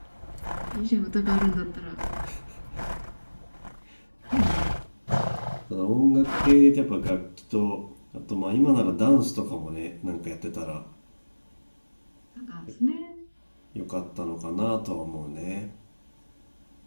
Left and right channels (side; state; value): both; inverted; correlation -1.00